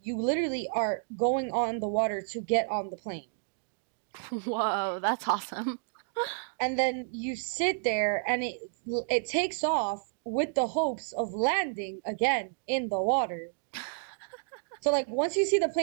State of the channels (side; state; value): left; silent; digital silence